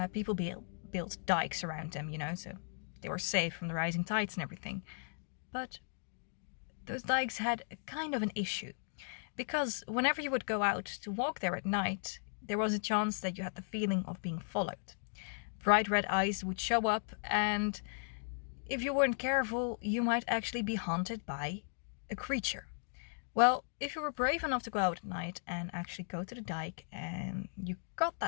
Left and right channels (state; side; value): silent; right; digital silence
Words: people built dikes around them, so they were safe from the rising tides and everything. But those dikes had a kind of an issue, because whenever you would go out to walk there at night, there was a chance that you had the feeling of being followed. Bright red eyes would show up, and if you weren't careful, you might actually be haunted by a creature. Well, if you were brave enough to go out at night and actually go to the dike and you got